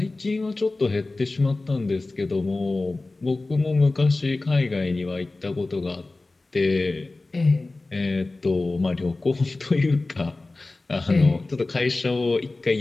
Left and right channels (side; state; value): right; quieter; 3.2 dB